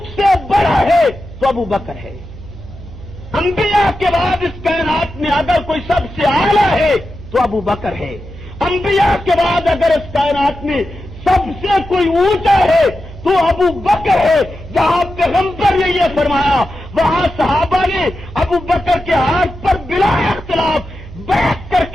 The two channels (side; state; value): right; noise; hum, 15 dB below the sound